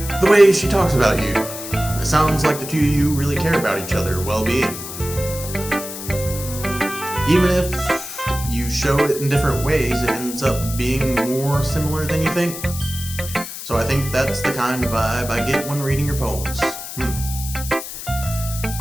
The way she talks about you, it sounds like the two of you really care about each other's well-being. Even if you show it in different ways, it ends up being more similar than you think. So I think that's the kind of vibe I get when reading your poems.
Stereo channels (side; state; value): left; noise; hiss, 9 dB below the sound